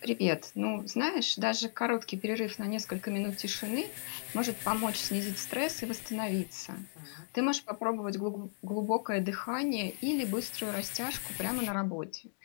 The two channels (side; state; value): right; silent; digital silence